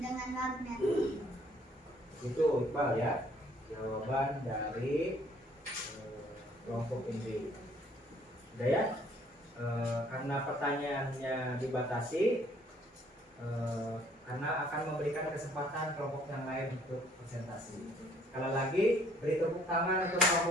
magnet. Itu Iqbal ya, jawaban dari kelompok ini. Udah ya, karena pertanyaannya dibatasi, karena akan memberikan kesempatan kelompok yang lain untuk presentasi. Sekali lagi, beri tepuk tangan untuk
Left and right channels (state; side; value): normal; both; correlation 0.62